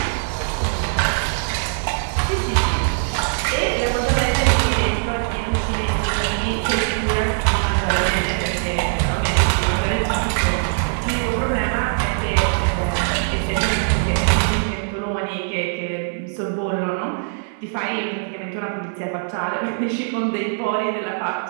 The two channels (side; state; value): left; silent; digital silence